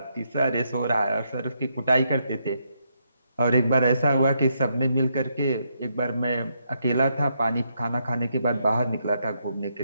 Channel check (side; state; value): both; inverted; correlation -0.78